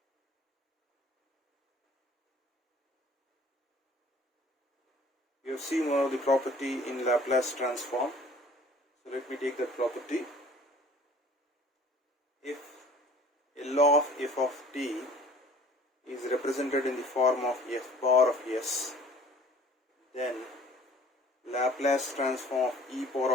We have seen one of the property in Laplace transform. So let me take that property. If a law of f of t is represented in the form of f bar of s, then Laplace transform of e power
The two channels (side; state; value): both; normal; correlation 0.51